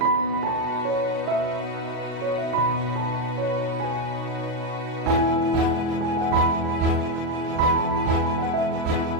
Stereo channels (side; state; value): left; late; 39 ms